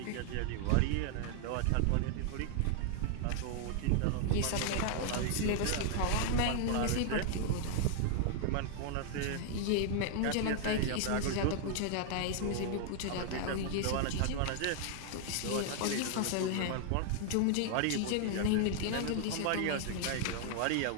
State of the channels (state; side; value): different; both; correlation 0.00